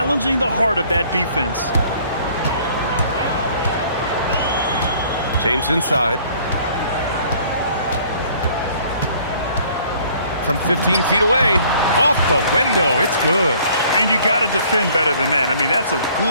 the heart of that defense. James inside. From 15 feet away. Off the window. It's good. And you got to defend better than that. I mean, that's a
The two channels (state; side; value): inverted; both; correlation -0.57